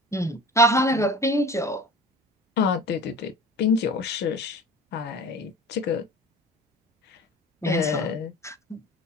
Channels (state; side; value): normal; both; correlation 0.39